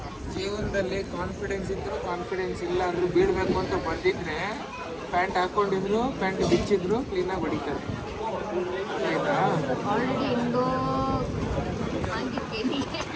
ಜೀವನದಲ್ಲಿ ಕಾನ್ಫಿಡೆನ್ಸ್ ಇದ್ರು ಕಾನ್ಫಿಡೆನ್ಸ್ ಇಲ್ಲ ಅಂದ್ರೂ ಬೀಳ್ಬೇಕು ಅಂತ ಬಂದಿದ್ರೆ ಪ್ಯಾಂಟ್ ಹಾಕೊಂಡಿದ್ರು, ಪ್ಯಾಂಟ್ ಬಿಚ್ಚಿದ್ರು ಕ್ಲೀನಾಗಿ ಹೊಡಿತಾರೆ. ಆಯ್ತಾ? ಆಲ್ರೆಡಿ ಹೆಂಗೋ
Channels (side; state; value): both; identical; correlation 1.00